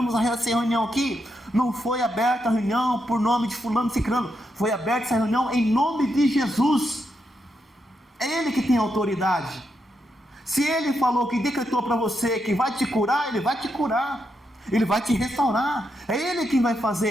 essa reunião aqui. Não foi aberta a reunião por nome de fulano ciclano. Foi aberta essa reunião em nome de Jesus. É Ele que tem autoridade. Se Ele falou que decretou para você que vai te curar, Ele vai te curar. Ele vai te restaurar. É Ele quem vai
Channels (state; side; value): normal; both; correlation 0.82